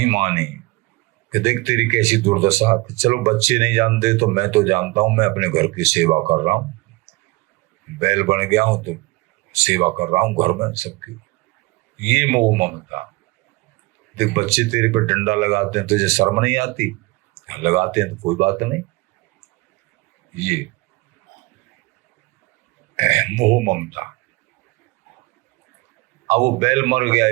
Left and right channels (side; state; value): left; quieter; 23.4 dB